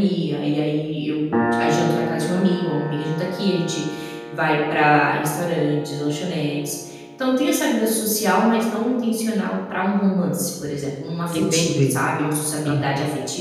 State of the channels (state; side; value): identical; both; correlation 1.00